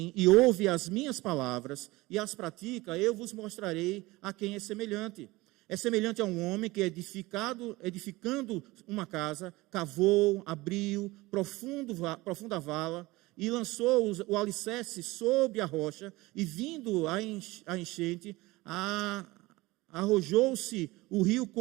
e ouve as minhas palavras e as pratica, eu vos mostrarei a quem é semelhante. É semelhante a um homem que, edificando uma casa, cavou, abriu profunda vala e lançou o alicerce sobre a rocha, e vindo a enchente, arrojou-se o rio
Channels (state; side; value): quieter; left; 20.6 dB